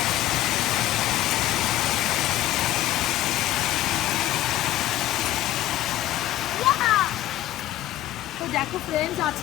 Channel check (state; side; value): quieter; right; 14.1 dB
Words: তো দেখো ফ্রেন্ডস,